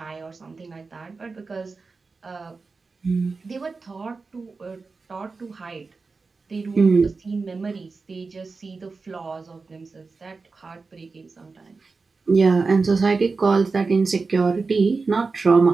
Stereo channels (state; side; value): quieter; left; 4.2 dB